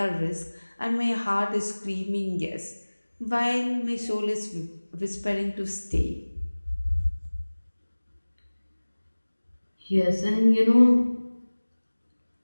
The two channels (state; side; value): inverted; both; correlation -1.00